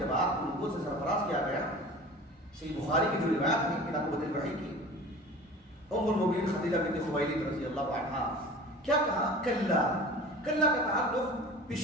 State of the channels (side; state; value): both; normal; correlation 0.40